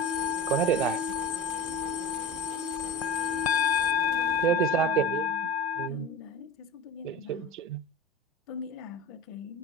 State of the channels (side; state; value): both; normal; correlation 0.31